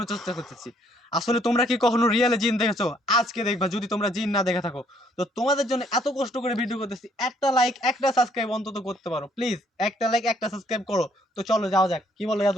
চেষ্টা করতেছি। আসলে তোমরা কি কখনো রিয়েলে জিন দেখেছো? আজকে দেখবা। যদি তোমরা জিন না দেখে থাকো, তো তোমাদের জন্য এত কষ্ট করে ভিডিও করতেছি। একটা লাইক, একটা সাবস্ক্রাইব অন্তত করতে পারো প্লিজ। একটা লাইক, একটা সাবস্ক্রাইব করো। তো চলো যাওয়া যাক। কি বলো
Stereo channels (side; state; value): both; normal; correlation 0.66